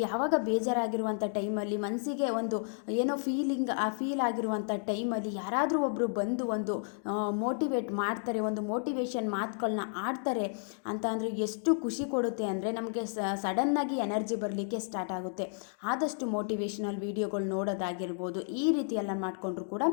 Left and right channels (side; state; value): right; silent; 56 dB below the other